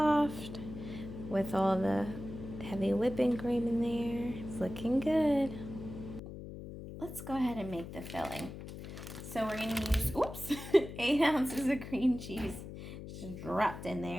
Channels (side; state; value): left; noise; hum, 11 dB below the sound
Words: with all the heavy whipping cream in there. It's looking good. Let's go ahead and make the filling. So we're gonna use, 8 ounces of cream cheese just dropped in